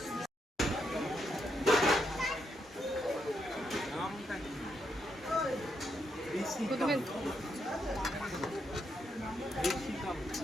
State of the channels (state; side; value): normal; both; correlation 0.80